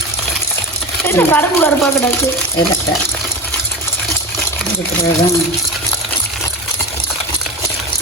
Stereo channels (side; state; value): both; normal; correlation 0.27